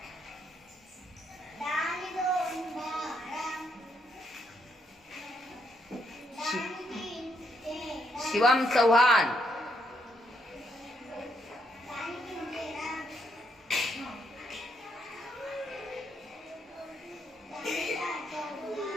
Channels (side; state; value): both; normal; correlation 0.76